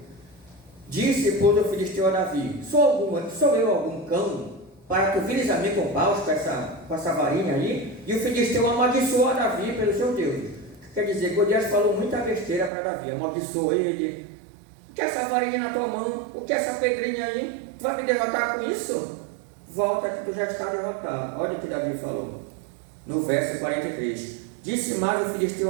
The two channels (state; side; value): drops out; left; at 12.7 s